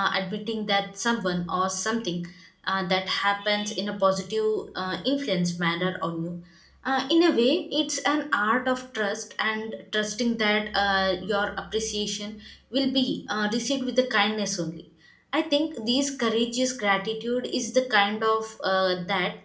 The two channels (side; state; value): both; identical; correlation 1.00